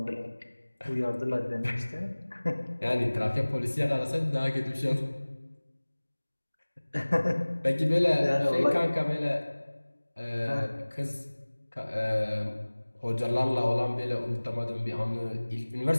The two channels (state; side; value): inverted; both; correlation -1.00